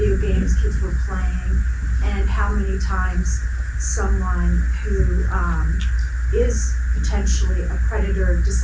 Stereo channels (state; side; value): identical; both; correlation 1.00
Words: games kids were playing, and how many times someone who is potentially a predator